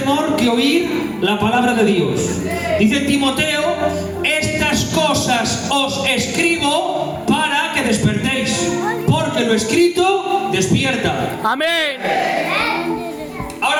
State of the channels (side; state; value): both; identical; correlation 1.00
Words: que oír la palabra de Dios. Dice Timoteo, estas cosas os escribo para que despertéis, porque lo escrito despierta. ¡Amén!